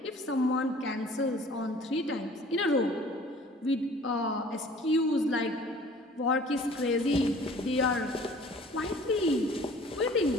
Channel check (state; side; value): normal; both; correlation 0.50